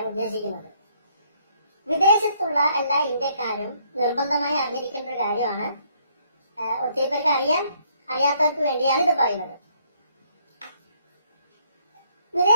ഉദ്ദേശിക്കുന്നത്. വിദേശത്തുള്ള എല്ലാ ഇന്ത്യക്കാരും നിർബന്ധമായി അറിഞ്ഞിരിക്കേണ്ട ഒരു കാര്യമാണ്. ഒത്തിരി പേർക്ക് അറിയാത്തവർക്ക് വേണ്ടിയാണ് ഇത് പറയുന്നത്.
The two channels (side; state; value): both; inverted; correlation -0.69